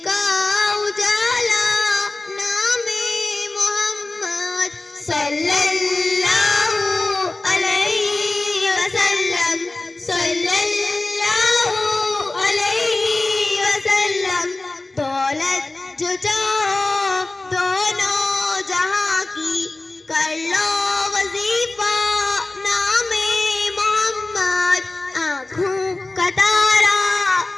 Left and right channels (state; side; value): quieter; right; 3.0 dB